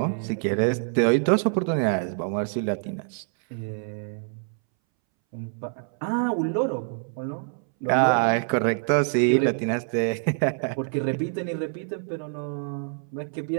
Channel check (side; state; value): left; silent; 61 dB below the other